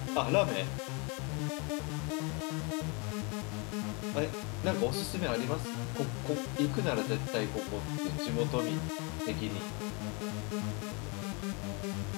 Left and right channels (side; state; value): right; quieter; 31.9 dB